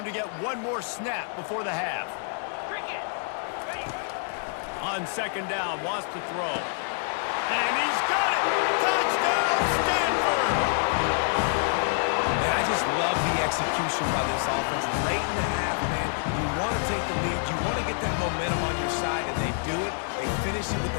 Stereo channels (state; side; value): silent; right; 60 dB below the other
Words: to get one more snap before the half. On second down, wants to throw. And he's got it! Touchdown, Stanford! Man, I just love the execution by this offense. Late in the half, man, you want to take the lead. You want to get that momentum on your side, and they do it. They finish it with